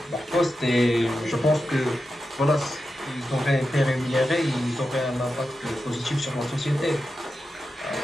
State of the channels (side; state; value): both; normal; correlation 0.90